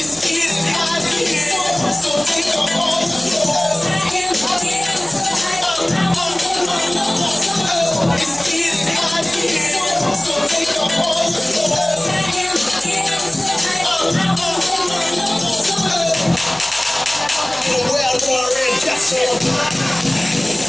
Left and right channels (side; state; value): left; noise; hum, 24 dB below the sound